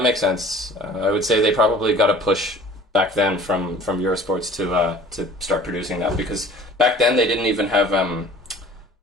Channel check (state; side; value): normal; both; correlation 0.47